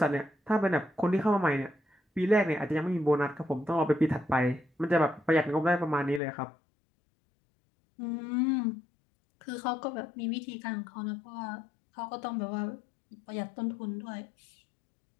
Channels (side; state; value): right; drops out; at 6.2 s